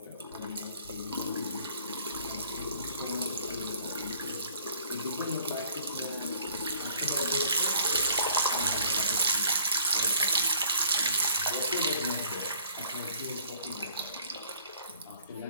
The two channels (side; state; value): both; inverted; correlation -0.57